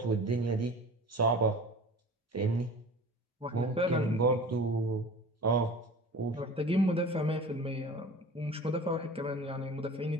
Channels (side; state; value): both; normal; correlation 0.39